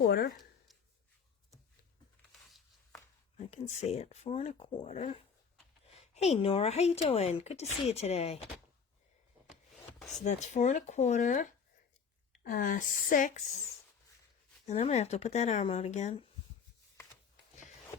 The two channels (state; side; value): quieter; right; 6.1 dB